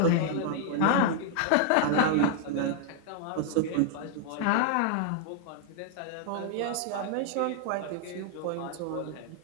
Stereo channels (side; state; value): both; different; correlation 0.00